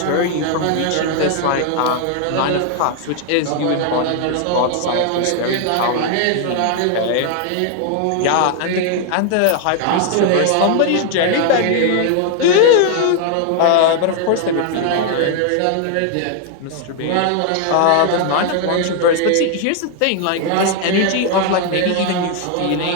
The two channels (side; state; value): both; different; correlation 0.00